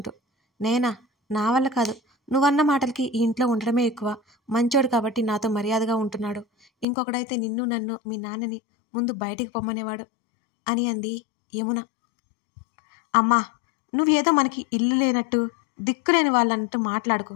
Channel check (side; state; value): right; drops out; at 6.9 s